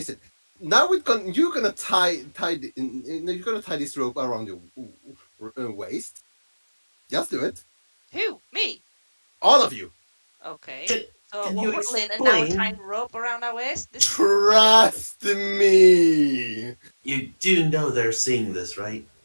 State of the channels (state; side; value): inverted; both; correlation -1.00